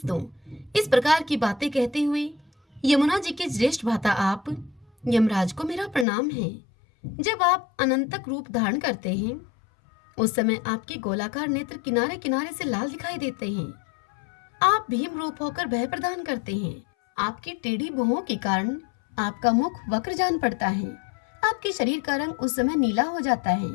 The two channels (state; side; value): drops out; right; at 6.1 s